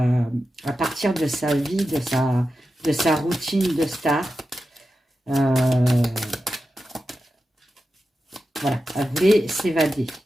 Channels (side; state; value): both; normal; correlation 0.91